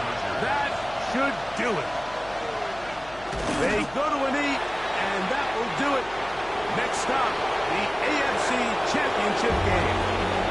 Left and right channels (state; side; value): noise; left; hum, 21 dB below the sound